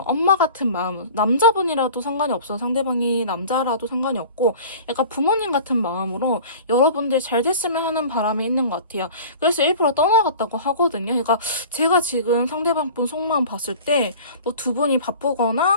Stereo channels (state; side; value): inverted; both; correlation -0.41